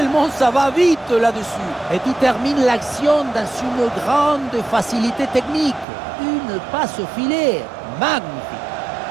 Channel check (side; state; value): left; drops out; at 5.9 s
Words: ça va vite là-dessus. Et tu termines l'action dans une grande facilité technique. Une passe au filet magnifique.